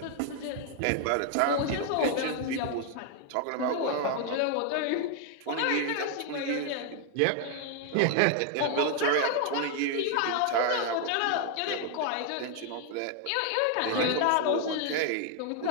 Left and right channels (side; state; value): both; different; correlation 0.00